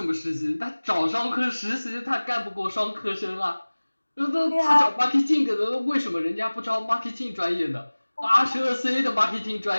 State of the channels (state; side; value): inverted; both; correlation -1.00